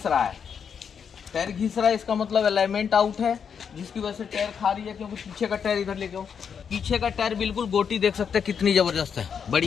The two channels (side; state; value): right; quieter; 7.1 dB